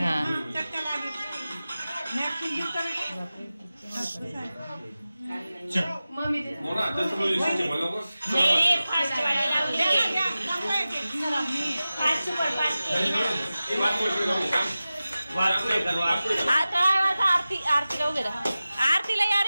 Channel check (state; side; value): inverted; both; correlation -0.96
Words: आरतीला वगैरे आरतीला या